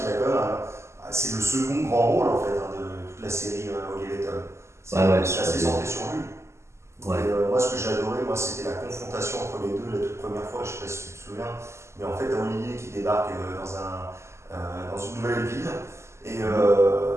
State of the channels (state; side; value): late; left; 0.13 ms